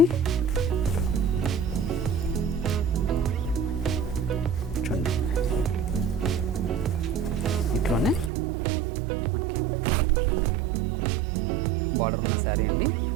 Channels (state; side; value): drops out; left; at 8.3 s